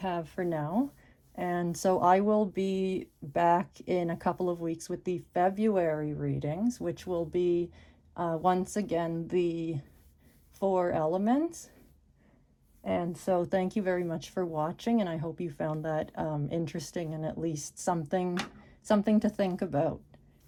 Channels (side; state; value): both; identical; correlation 1.00